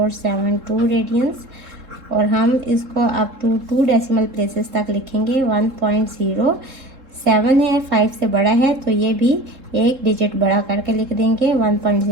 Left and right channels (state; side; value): late; left; 3.7 ms